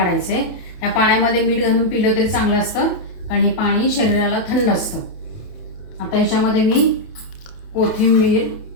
आहे। या पाण्यामध्ये मीठ घालून पिलं तरी चांगलं असतं, कारण हे पाणी शरीराला थंड असतं। आता ह्याच्यामध्ये मी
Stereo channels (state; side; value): late; right; 28 ms